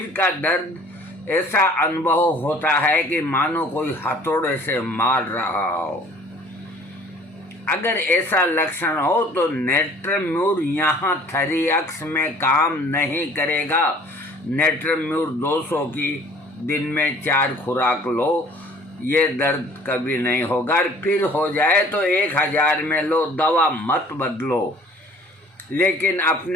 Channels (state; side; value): normal; both; correlation 0.52